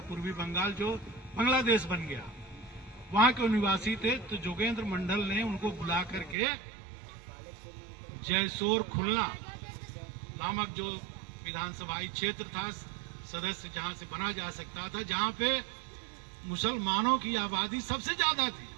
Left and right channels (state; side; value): drops out; left; at 6.4 s